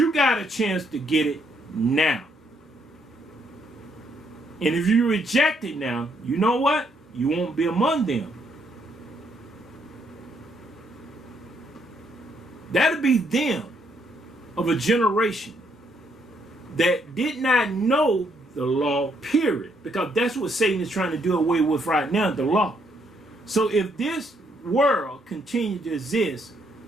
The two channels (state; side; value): normal; both; correlation 0.72